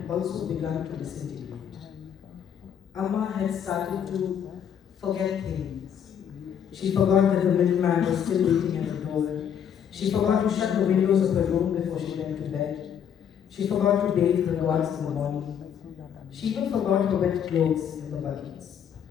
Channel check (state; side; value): quieter; right; 8.5 dB